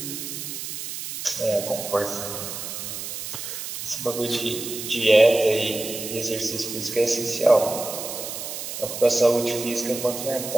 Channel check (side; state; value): right; noise; hiss, 7 dB below the sound